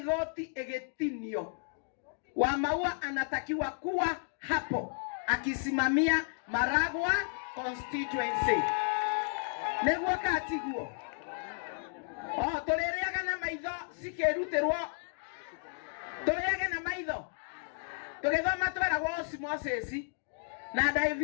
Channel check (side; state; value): right; silent; 56 dB below the other